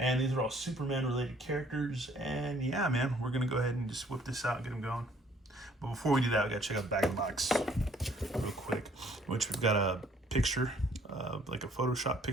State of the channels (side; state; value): both; normal; correlation 0.61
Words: these are all Superman related characters. And yeah, man, we're gonna go ahead and just whip this out and get them going. But before we do that, we gotta check out the back of the box real quick, which we've got a picture, like a Photoshop